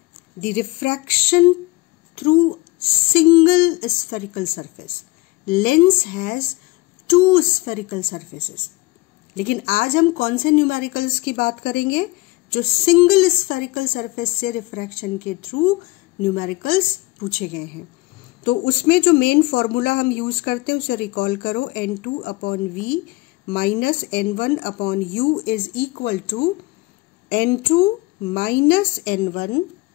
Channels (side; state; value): right; quieter; 22.1 dB